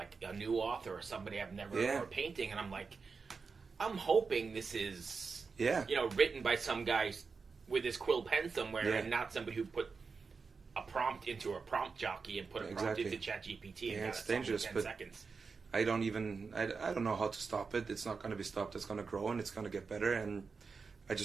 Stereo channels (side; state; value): left; quieter; 4.9 dB